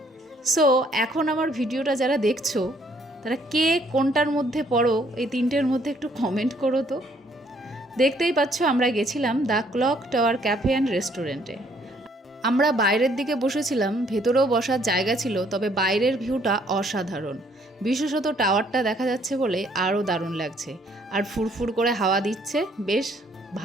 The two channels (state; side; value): normal; both; correlation 0.65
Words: সো এখন আমার ভিডিওটা যারা দেখছো তারা কে কোনটার মধ্যে পড়ো, এই তিনটের মধ্যে একটু কমেন্ট করো তো। দেখতেই পাচ্ছ আমরা গেছিলাম the clock tower cafe and রেস্টুরেন্টে। আমরা বাইরের দিকে বসেছিলাম, ভেতরেও বসার জায়গা ছিল, তবে বাইরের ভিউটা অসাধারণ। বিশেষত টাওয়ারটা দেখা যাচ্ছে বলে আরও দারুণ লাগছে, আর ফুরফুর করে হাওয়া দিচ্ছে, বেশ